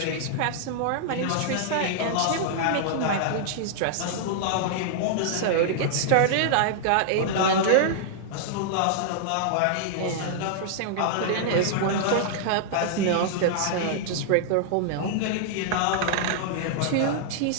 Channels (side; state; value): both; different; correlation -0.01